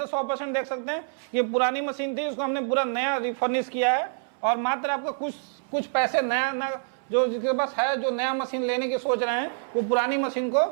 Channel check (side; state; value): left; silent; 61 dB below the other